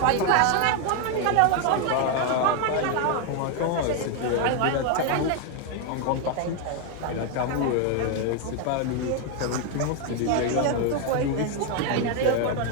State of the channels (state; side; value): different; both; correlation 0.01